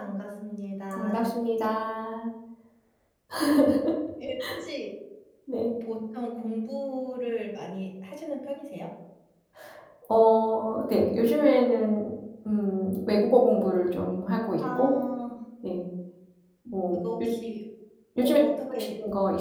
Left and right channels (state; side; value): identical; both; correlation 1.00